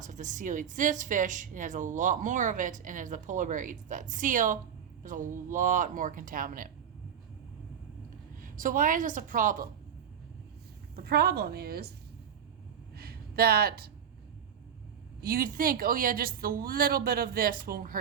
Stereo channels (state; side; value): quieter; left; 8.4 dB